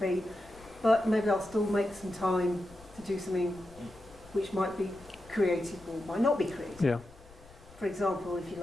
but maybe I'll still make some time to do something which might be creative or might not be creative. Yeah. For example, if you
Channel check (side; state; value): left; noise; rumble, 23 dB below the sound